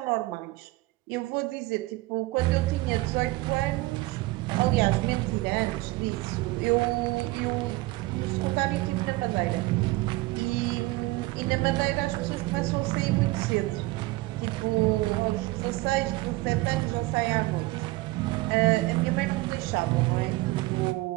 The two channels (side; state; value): left; quieter; 20.4 dB